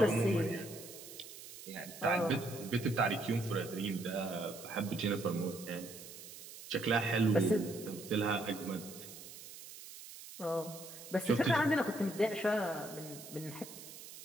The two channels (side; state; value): right; noise; hiss, 14 dB below the sound